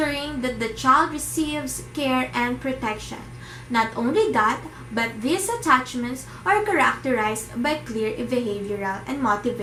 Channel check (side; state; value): both; identical; correlation 1.00